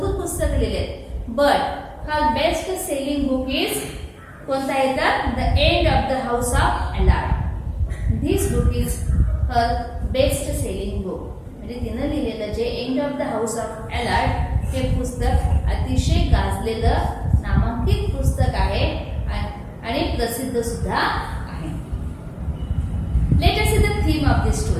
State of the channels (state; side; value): identical; both; correlation 1.00